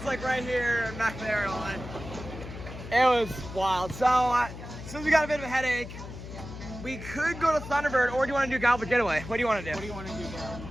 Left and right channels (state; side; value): noise; left; hum, 11 dB below the sound